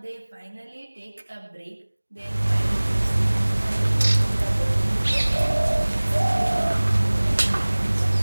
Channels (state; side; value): inverted; both; correlation -1.00